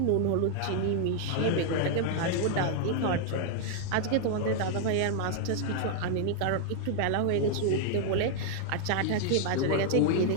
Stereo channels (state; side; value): different; both; correlation 0.00